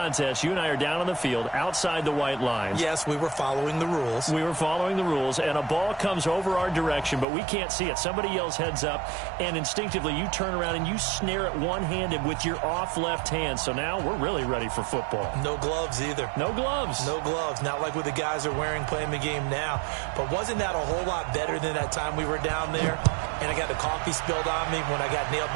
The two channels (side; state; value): left; drops out; at 7.2 s